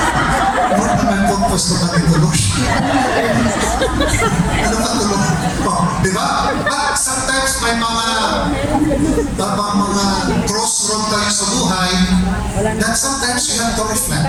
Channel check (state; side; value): identical; both; correlation 1.00